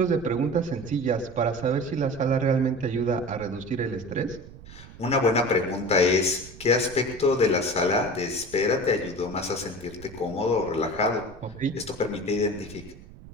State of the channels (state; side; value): noise; right; rumble, 17 dB below the sound